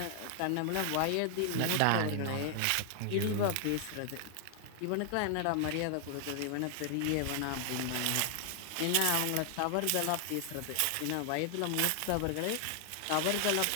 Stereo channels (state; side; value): different; both; correlation 0.00